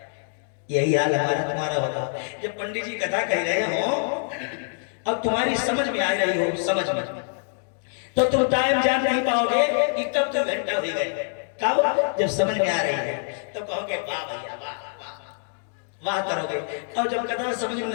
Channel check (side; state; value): right; silent; 62 dB below the other